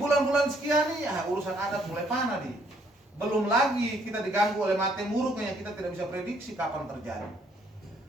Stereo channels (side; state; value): both; normal; correlation 0.67